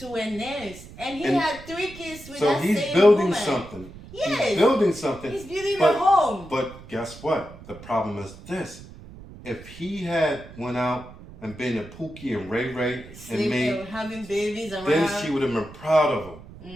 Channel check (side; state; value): right; noise; rumble, 17 dB below the sound